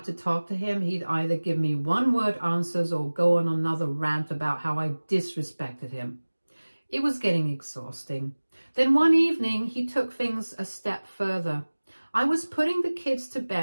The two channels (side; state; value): both; inverted; correlation -1.00